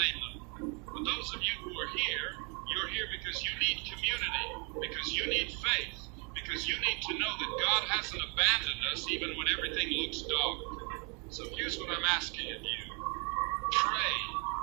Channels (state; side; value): quieter; left; 34.7 dB